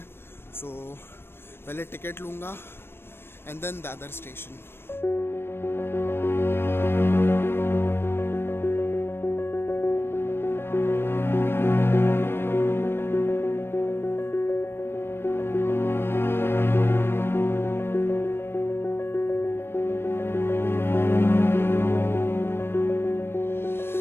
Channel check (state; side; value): late; right; 0.11 ms